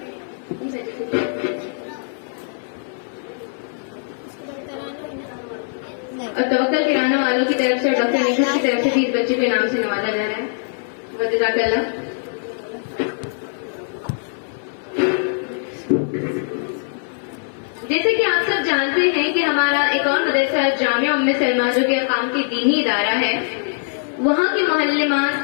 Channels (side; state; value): right; silent; 65 dB below the other